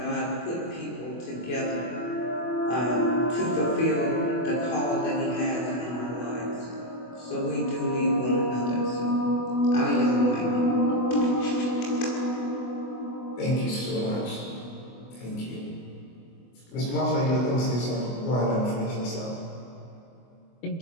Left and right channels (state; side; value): late; right; 24 ms